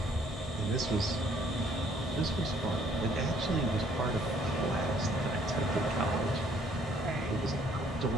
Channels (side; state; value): both; normal; correlation 0.63